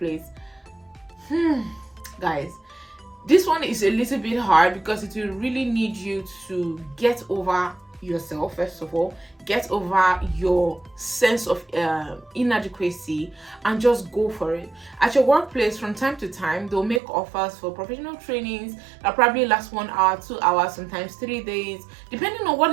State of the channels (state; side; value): drops out; left; at 17.0 s